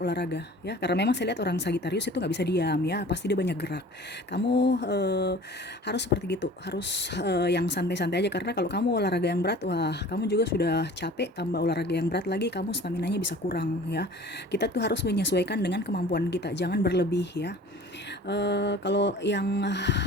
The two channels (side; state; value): both; normal; correlation 0.45